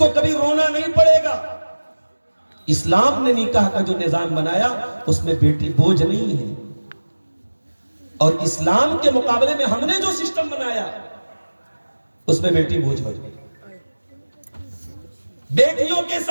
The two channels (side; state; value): both; inverted; correlation -1.00